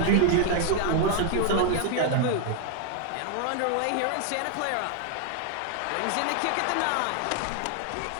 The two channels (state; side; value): different; both; correlation 0.00